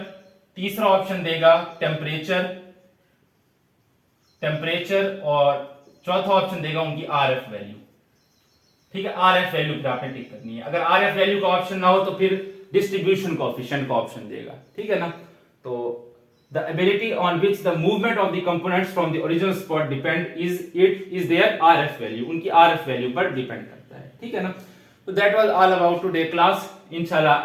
तीसरा ऑप्शन देगा टेम्परेचर और चौथा ऑप्शन देगा उनकी आरएफ वैल्यू, ठीक है। आरएफ वैल्यू पर आपने टिक करनी है। अगर आरएफ वैल्यू का ऑप्शन ना हो तो फिर डिस्ट्रीब्यूशन कोएफिशिएंट का ऑप्शन देगा, ठीक है ना। तो the ability on which the movement of the components from the original spot depend is their Rf value, उनकी आरएफ वैल्यू पर डिपेंड करता है, ठीक है ना। तो that was all about today class. इंशाल्लाह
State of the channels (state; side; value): identical; both; correlation 1.00